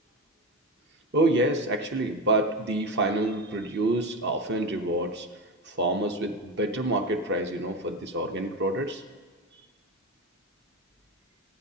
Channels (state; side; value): normal; both; correlation 0.21